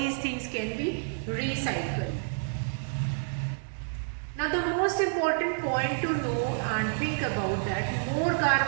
things can be recycled. Now the most important point to know and think about that, more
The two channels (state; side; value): silent; left; digital silence